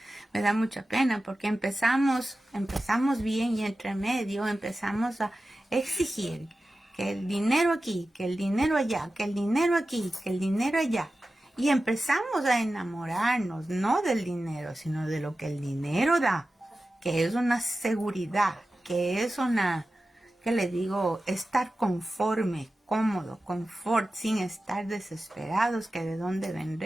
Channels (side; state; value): both; normal; correlation 0.94